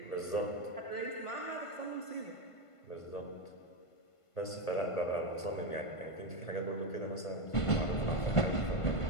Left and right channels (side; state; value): right; late; 1.5 ms